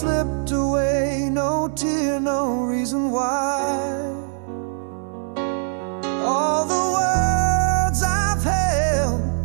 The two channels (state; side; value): silent; left; 64 dB below the other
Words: away, no tear, no reason why. All the words I've held,